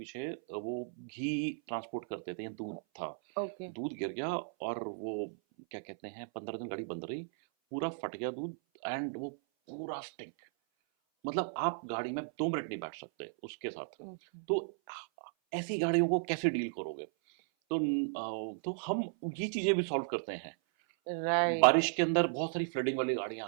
वो घी ट्रांसपोर्ट करते थे या दूध था, ओके, दूध गिर गया, और वो क्या कहते हैं, 15 दिन गाड़ी बंद रही, पूरा फट गया दूध, एंड वो पूरा स्टिंक, मतलब आप गाड़ी में 2 मिनट नहीं बैठ सकते उसके साथ। ओके, तो ऐसी गाड़ियों को कैसे डील करोगे? तो हम ये चीज़ें भी सॉल्व करते हैं। राइट। बारिश के अंदर बहुत सारी फ्लडिंग वाली गाड़ियां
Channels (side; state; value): left; silent; 54 dB below the other